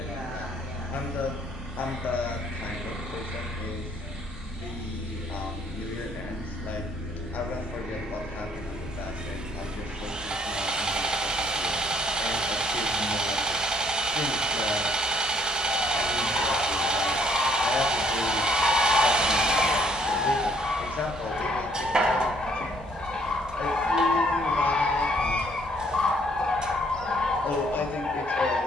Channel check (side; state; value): both; normal; correlation 0.64